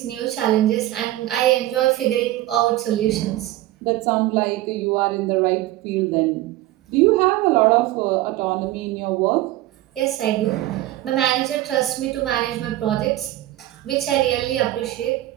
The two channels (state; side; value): quieter; left; 15.8 dB